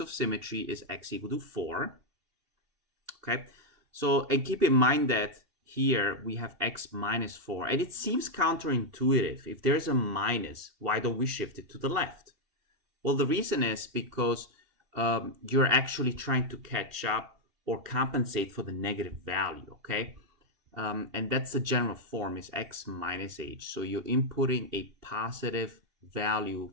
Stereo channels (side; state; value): left; late; 2.7 ms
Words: symmetry is x equal to 4, okay? So, and keep in mind that here we have x minus 4, and it seems counterintuitive. If there's a minus, why don't we shift it to the left? Well, the reason is because you're actually trying to catch up or compensate for the negative value, okay? And that's the general form, is x minus h. So you're inputting a positive value